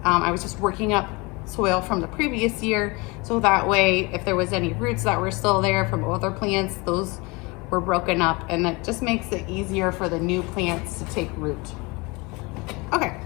I was just working up soil from the previous year, so that way if there was any roots that were still there from other plants, those were broken up, and that just makes it easier for the new plants to take root. Okay,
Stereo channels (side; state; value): right; quieter; 26.1 dB